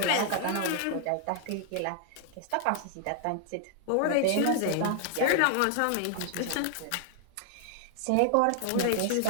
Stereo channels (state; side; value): different; both; correlation 0.00